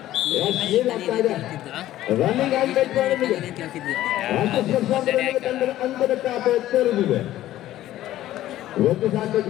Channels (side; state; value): right; quieter; 14.0 dB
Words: ರನ್ನಿಂಗ್ ಅಂಕದ ಖಾತೆ ತೆರೆದಿದೆ. ಒಂದು ಸಾಕಷ್ಟು